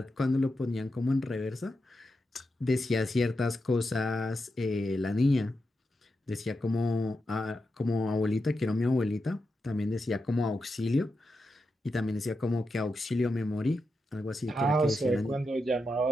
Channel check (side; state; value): both; normal; correlation 0.87